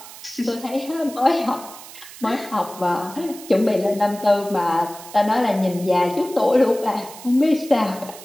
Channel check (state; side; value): noise; right; hiss, 16 dB below the sound